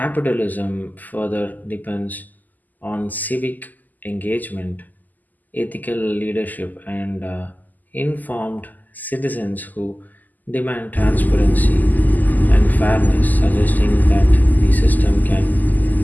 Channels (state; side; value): late; right; 0.083 ms